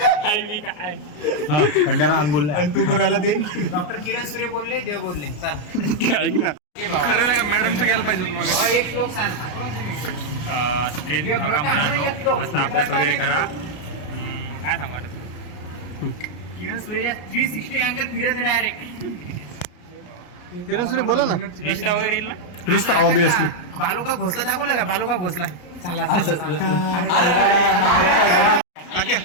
काय मी काय खंडारा आण बोलला. तू कोणाला ते डॉक्टर किरण सूर्य बोलले देव बोलले चला ऐक ना खरं नाही का मॅडमचं घ्यायला पाहिजे एक श्लोक सांग स्ट्रेस घेऊ नका मुलांनो. मस्त अभ्यास वगैरे करा. काय सांगू आता तू किरण सूर्यच्या 360 अँगल फिरत आहे डायरेक्ट किरण सुरे बोला ना रिश्ता वगैरे येईल ना. रिश्ता ऑब्विसली बालू का घोसला दाखवला का बालू का घोसला चला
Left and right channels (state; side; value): late; right; 33 ms